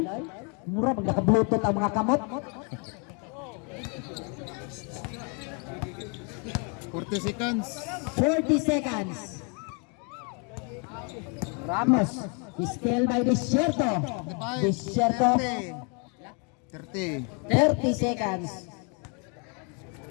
Mura pag naka-bluetooth ang mga kamot. 40 seconds. 40 seconds. Ramos still by Desierto 30. 30 seconds.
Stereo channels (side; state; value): right; quieter; 36.0 dB